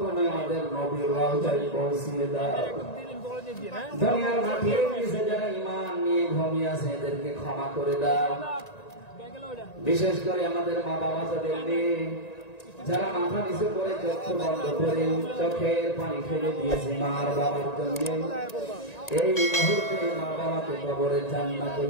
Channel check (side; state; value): right; late; 1.9 ms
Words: তুমি আমাদের নবীর রওজায় পৌঁছিয়ে দাও। দুনিয়ার মাটির নিচে যারা ঈমান নিয়ে ঘুমিয়ে আছে এদেরকে ক্ষমা করে দাও। বিশেষ করে আমাদের মা বাবা যাদের নেই, যারা মাথা নিচে করে চক্ষু বন্ধ করে চোখের পানি ফেলে দিয়েছে মার বাবার জন্য, এই মুহূর্তে মা বাবাকে কবরে